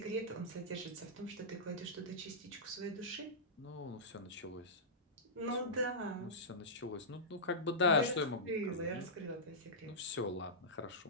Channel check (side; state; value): both; normal; correlation -0.16